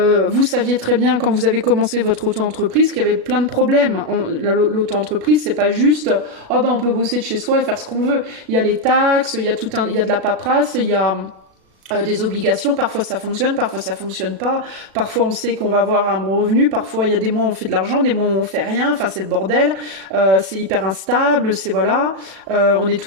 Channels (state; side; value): late; left; 37 ms